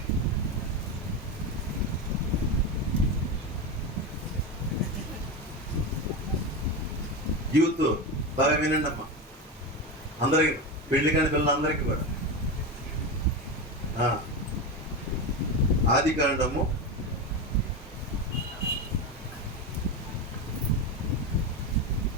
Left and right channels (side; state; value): both; normal; correlation 0.18